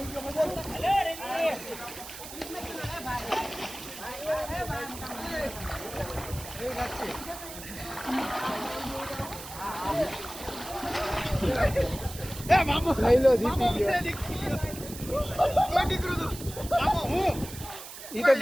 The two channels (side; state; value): right; noise; hiss, 12 dB below the sound